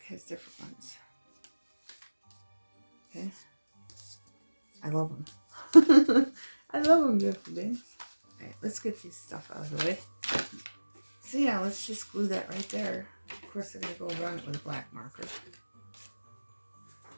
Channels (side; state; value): both; inverted; correlation -1.00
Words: has different ones. Okay? I love them. I love them, beautiful things. Alright, let's get these stuff out of the way. So yeah, let's just glue that right there. Of course, I'm going to go around it with a black marker.